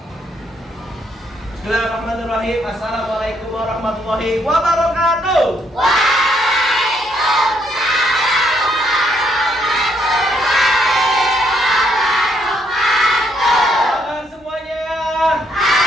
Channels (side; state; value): both; normal; correlation 0.72